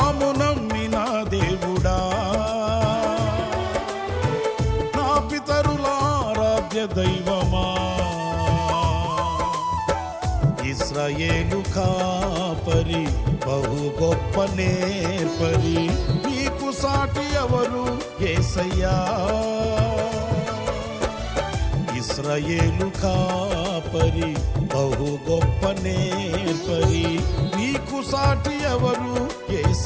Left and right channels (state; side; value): identical; both; correlation 1.00